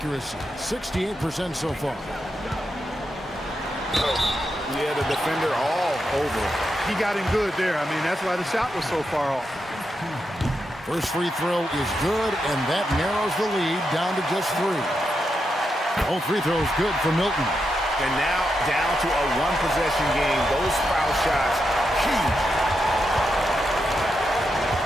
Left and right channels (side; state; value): both; normal; correlation 0.85